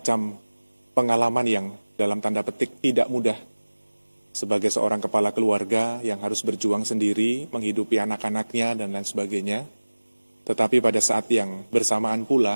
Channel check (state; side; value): inverted; both; correlation -1.00